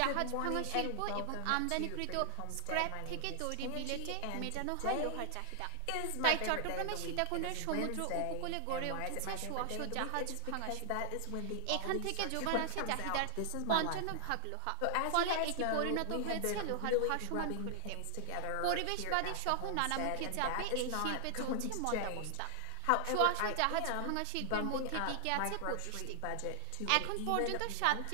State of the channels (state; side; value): different; both; correlation 0.00